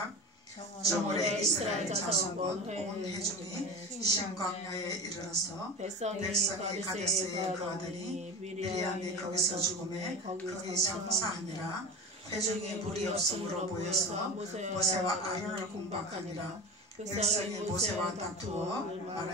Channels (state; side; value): normal; both; correlation 0.30